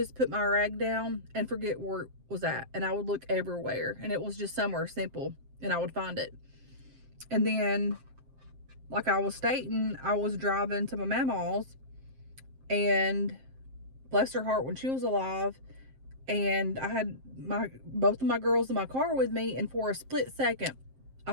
put my rag down, and forget where it was at. And I would look everywhere. And it was just somewhere simple. And I would find it. And then, like I was stating, I was driving to my mama's. And bless her heart, when she was alive, and I had both of my girls in my car with me. And for a split second,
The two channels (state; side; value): late; left; 7.6 ms